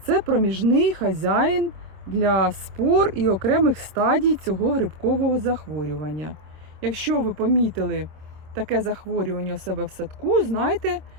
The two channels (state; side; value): late; left; 26 ms